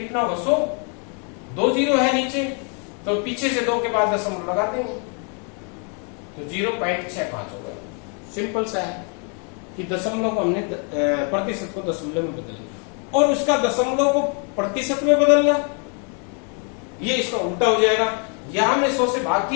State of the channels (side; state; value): right; quieter; 39.0 dB